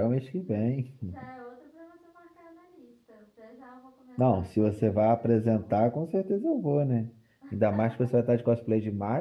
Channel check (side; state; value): both; identical; correlation 1.00